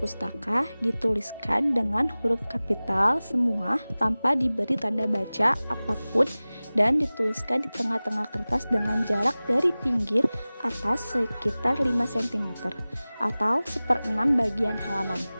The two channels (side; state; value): both; inverted; correlation -0.98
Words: dituliskan dengan huruf kapital semua tanpa diberi tanda baca apapun dan dituliskan di tengah-tengah kertas dengan jarak dari pinggir atas sekitar 5 cm atau 1/6 bagian halaman.